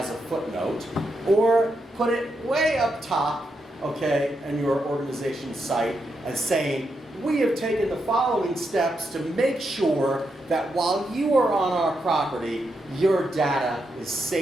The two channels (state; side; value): normal; both; correlation 0.83